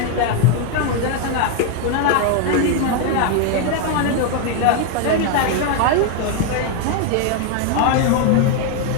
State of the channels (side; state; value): both; different; correlation 0.01